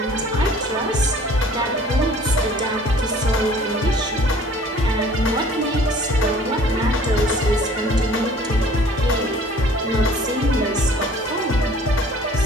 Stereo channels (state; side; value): normal; both; correlation 0.51